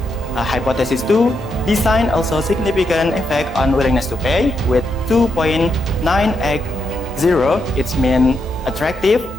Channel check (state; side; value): normal; both; correlation 0.82